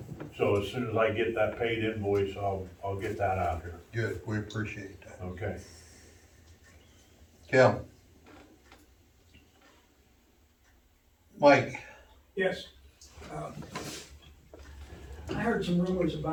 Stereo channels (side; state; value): both; identical; correlation 1.00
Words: So as soon as I get that paid invoice, I'll get that out here. good, we appreciate that. Okay. Kim? Mike? Yes. I heard some rumors